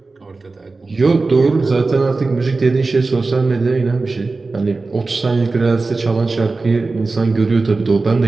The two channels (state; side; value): quieter; left; 3.7 dB